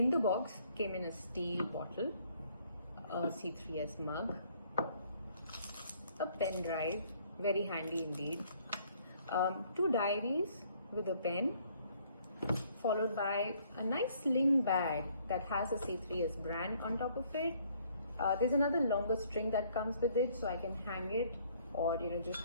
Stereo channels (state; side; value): inverted; both; correlation -0.63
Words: the box came in a steel bottle, a C3S mug, a pen drive, very handy indeed, 2 diaries with a pen, followed by a nice sling bag that has a C3S brand on top of it. There's another longer string that comes with it, so I can hang it or just